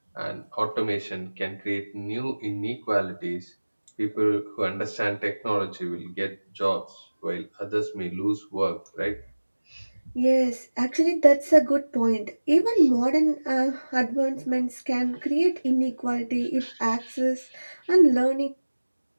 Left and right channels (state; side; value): inverted; both; correlation -1.00